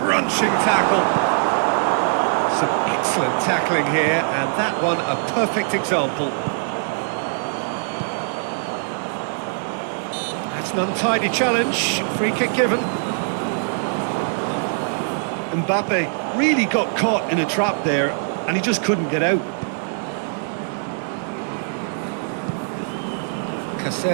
tackle. Some excellent tackling here, and that one a perfect example. That's an untidy challenge. Free kick given. Mbappé really got caught in a trap there, and he just couldn't get out.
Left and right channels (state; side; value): silent; left; digital silence